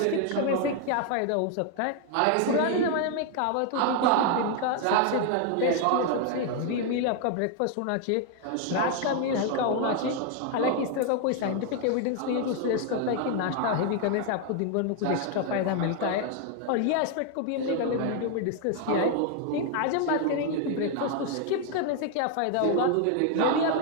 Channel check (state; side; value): different; both; correlation 0.00